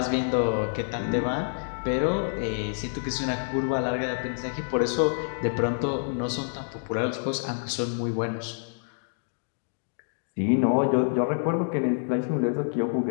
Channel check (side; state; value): right; silent; digital silence